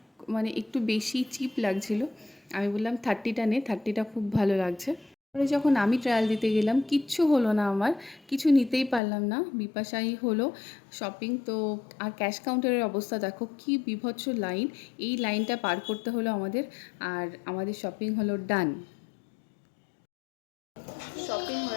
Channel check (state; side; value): drops out; right; at 9.0 s